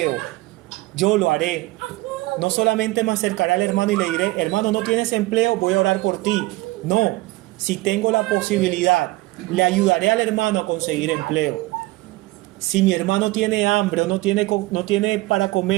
yo lo haré. No solamente me acercaré al hermano y le diré: hermano, no tienes empleo, voy a orar por ti. No, si tengo la posibilidad, le ayudaré al hermano a conseguir empleo. Si mi hermano tiene hambre o no tiene para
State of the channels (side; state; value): left; quieter; 20.1 dB